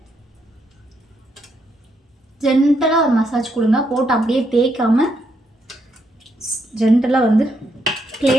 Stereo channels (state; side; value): normal; both; correlation 0.77